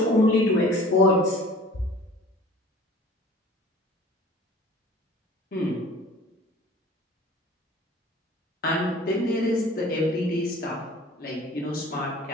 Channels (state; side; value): normal; both; correlation 0.46